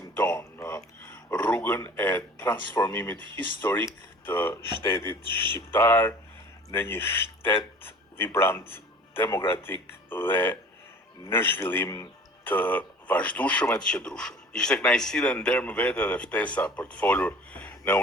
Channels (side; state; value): both; normal; correlation 0.45